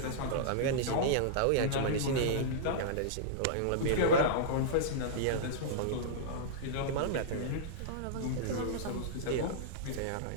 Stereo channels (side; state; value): both; different; correlation -0.03